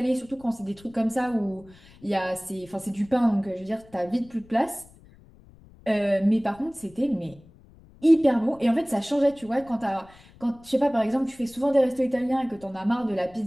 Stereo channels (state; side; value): noise; left; rumble, 25 dB below the sound